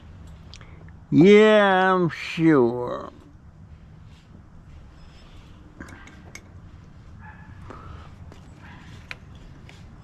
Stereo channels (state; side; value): identical; both; correlation 1.00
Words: Yeah, I'm sure."